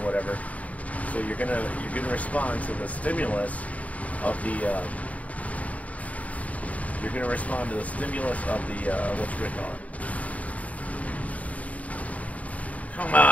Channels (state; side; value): late; right; 0.069 ms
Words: whatever. So you're gonna respond to the stimulus of the whatchamacallit. Come